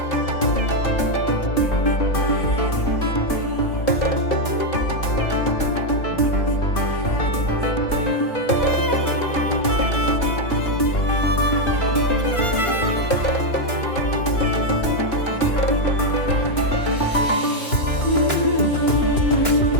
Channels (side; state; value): right; late; 2.9 ms